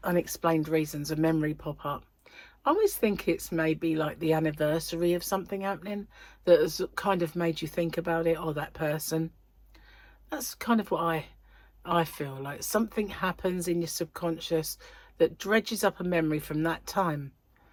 unexplained reasons, a memory pop up. I always think it's maybe like the anniversary of something happening that has kind of made you think about it, or that person. That's kind of what I feel like. Something happens in your subconscious that dredges up a memory from that time.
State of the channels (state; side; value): identical; both; correlation 1.00